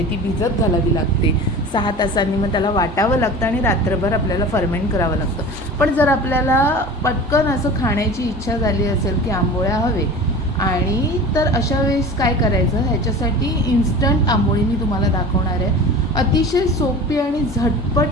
ती भिजत घालावी लागते 6 तासांनी. मग त्याला वाटावं लागतं आणि रात्रभर आपल्याला फर्मेंट करावं लागतं. पण जर आपल्याला पटकन असं खाण्याची इच्छा झाली असेल की आंबोळ्या हवे आणि तर अशा वेळेस काय करायचं, ह्याच्यासाठी इन्स्टंट आंबोळी मी तुम्हाला दाखवणार आहे. अतिशय सोपी आणि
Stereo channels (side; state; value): both; normal; correlation 0.36